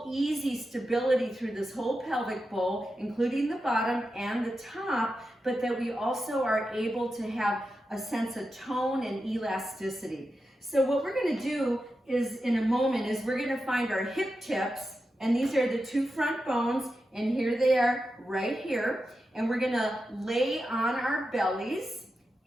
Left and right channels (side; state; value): both; normal; correlation 0.90